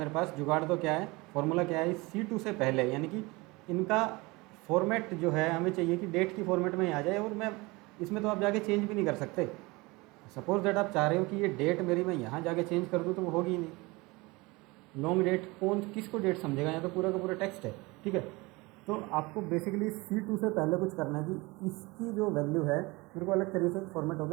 पास, जुगाड़ तो क्या है, फॉर्मूला क्या है, C2 से पहले, यानी कि इनका फॉर्मेट जो है हमें चाहिए कि डेट की फॉर्मेट में ही आ जाए, और मैं इसमें तो आप जाके चेंज भी नहीं कर सकते। सपोज दैट आप चाह रहे हो कि ये डेट मेरी मैं यहाँ जाके चेंज कर दूँ, तो वो होगी ही नहीं। लॉन्ग डेट कौन किसको डेट समझेगा, यहाँ तो पूरा का पूरा टेक्स्ट है, ठीक है। तो आपको बेसिकली C2 से पहले कुछ करना है कि इसकी जो वैल्यू है मेरे को अलग तरीके से फॉर्मेट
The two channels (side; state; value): left; quieter; 23.8 dB